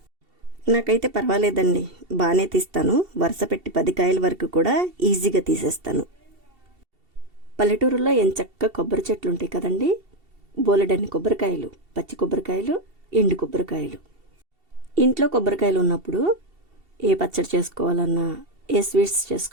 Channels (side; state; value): left; late; 2.7 ms